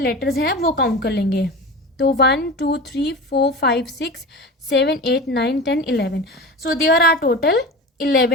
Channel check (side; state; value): both; normal; correlation 0.30